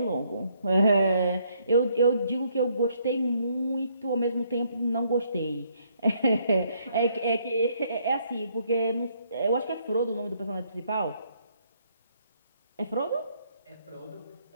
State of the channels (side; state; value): both; inverted; correlation -0.69